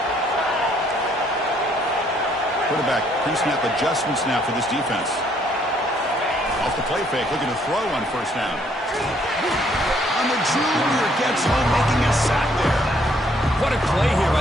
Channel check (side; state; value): both; normal; correlation 0.66